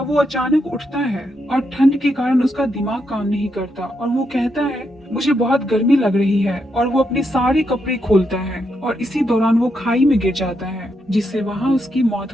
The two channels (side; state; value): both; normal; correlation 0.81